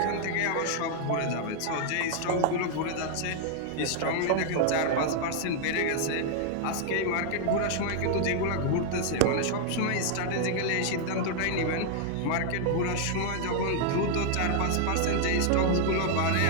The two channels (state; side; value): different; both; correlation 0.00